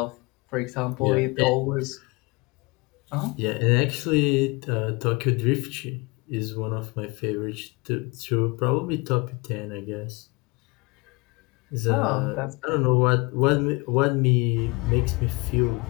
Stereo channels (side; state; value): right; quieter; 26.7 dB